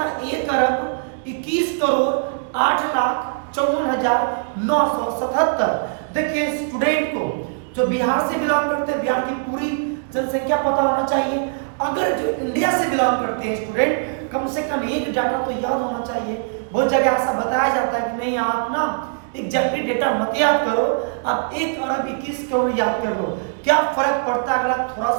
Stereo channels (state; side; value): silent; left; digital silence